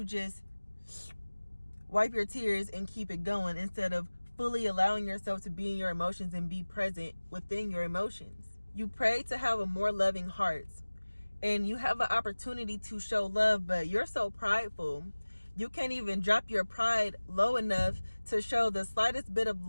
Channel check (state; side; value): inverted; both; correlation -1.00